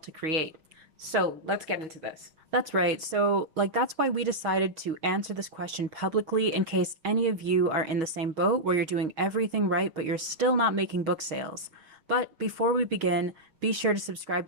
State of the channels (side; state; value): left; late; 6.3 ms